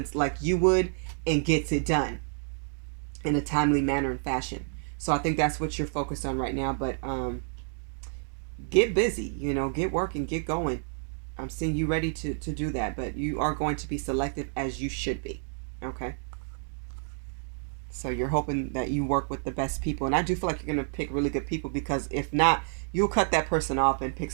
like you would and gets it done in a timely manner and fashion. So I think that's what you're focused on right now. But get busy, get working, get going. I'm seeing you ready to do that, but you are going to be selective as you should be. Okay? So you're hoping that you work with the best people. And I do feel like you're going to pick really good people, because if not, you'll cut that person off and pick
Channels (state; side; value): silent; left; 58 dB below the other